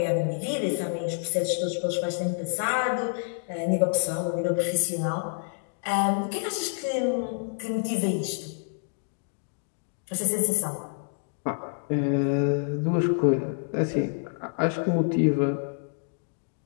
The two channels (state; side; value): silent; right; 60 dB below the other